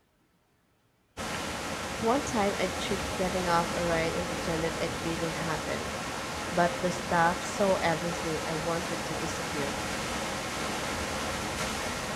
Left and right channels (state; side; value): identical; both; correlation 1.00